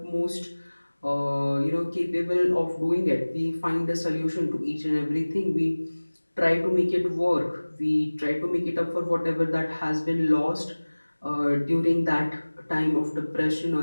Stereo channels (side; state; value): both; inverted; correlation -1.00